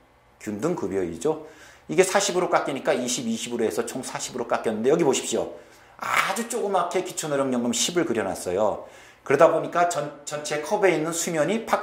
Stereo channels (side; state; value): both; identical; correlation 1.00